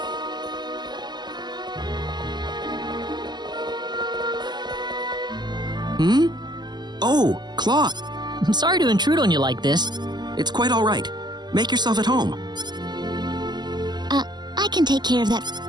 Hmm? Oh, Claude. I'm sorry to intrude on you like this. It's quite all right. Make yourself at home. I can take care of that.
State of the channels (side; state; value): left; late; 0.21 ms